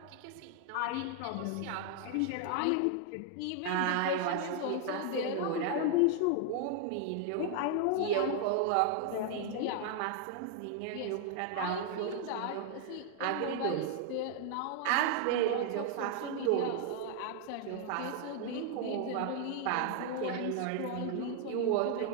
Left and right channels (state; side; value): different; both; correlation 0.00